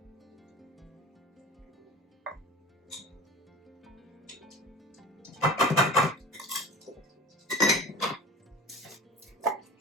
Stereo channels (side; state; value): both; normal; correlation 0.36